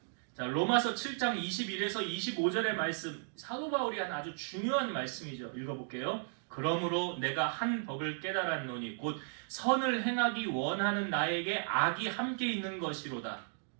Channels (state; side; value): silent; left; digital silence